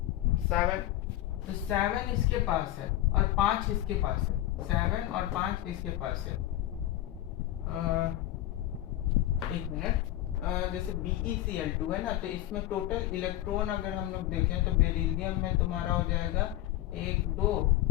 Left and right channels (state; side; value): quieter; right; 14.3 dB